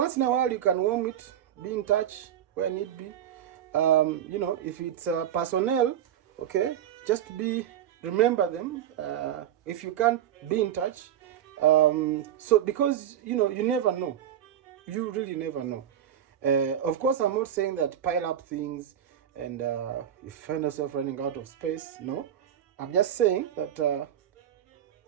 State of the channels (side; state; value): left; quieter; 10.4 dB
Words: in a while you can warm it, be in touch where need be. If it's personnel, okay, just remember them. If you can't, be in touch. So because you never know, you really never know. Of course, I'm not saying that pile up things and you find yourself running out of space. No, I'm just saying that